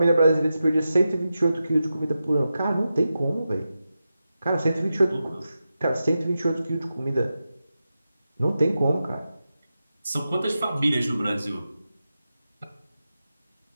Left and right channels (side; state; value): both; inverted; correlation -0.91